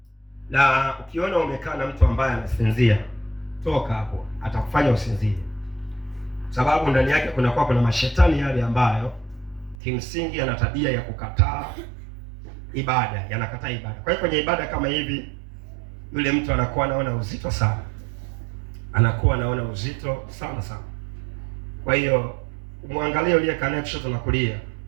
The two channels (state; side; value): drops out; left; at 9.8 s